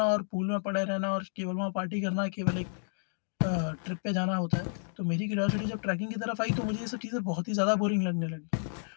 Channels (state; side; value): silent; right; digital silence